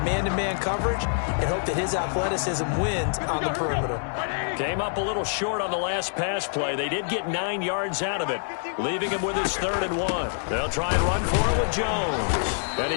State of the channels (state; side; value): silent; right; digital silence